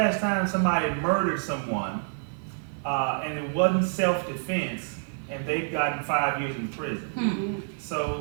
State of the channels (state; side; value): silent; left; 57 dB below the other